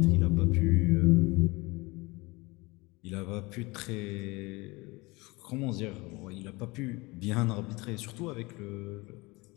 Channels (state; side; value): quieter; right; 23.7 dB